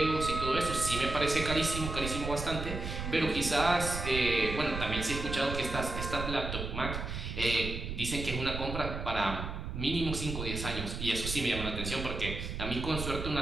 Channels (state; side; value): noise; right; rumble, 5 dB below the sound